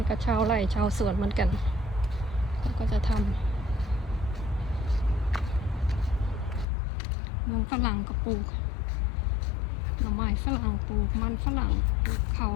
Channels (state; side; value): drops out; right; at 6.7 s